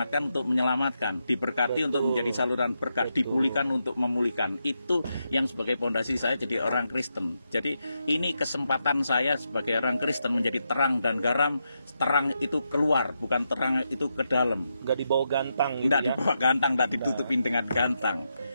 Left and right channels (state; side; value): inverted; both; correlation -0.85